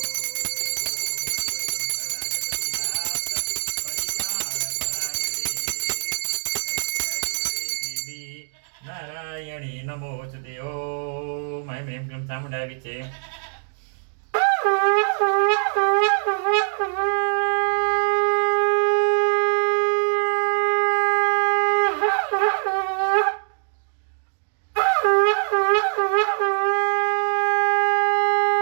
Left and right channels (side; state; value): left; silent; digital silence